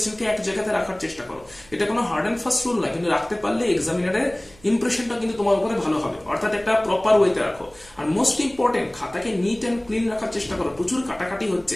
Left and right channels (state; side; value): noise; right; hum, 26 dB below the sound